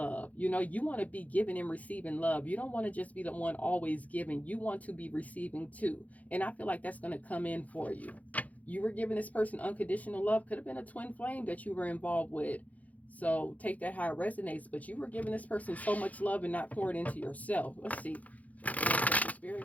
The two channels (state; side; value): late; right; 0.074 ms